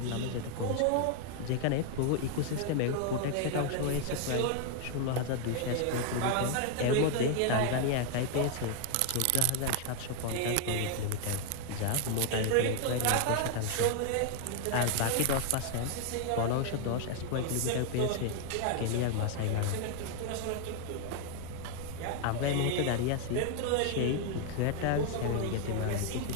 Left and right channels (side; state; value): both; different; correlation 0.00